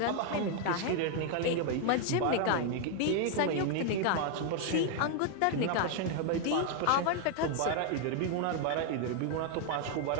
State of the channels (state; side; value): different; both; correlation 0.00